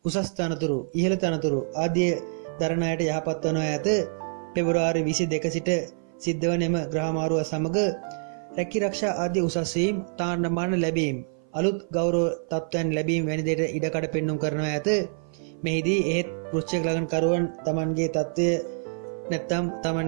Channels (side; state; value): left; silent; 56 dB below the other